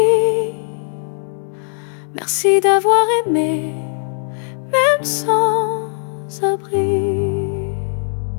Merci d'avoir aimé, même sans abri.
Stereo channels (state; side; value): silent; right; 63 dB below the other